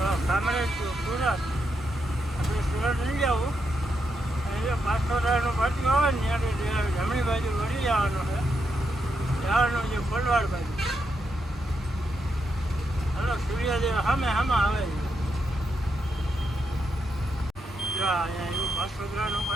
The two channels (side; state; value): both; normal; correlation 0.82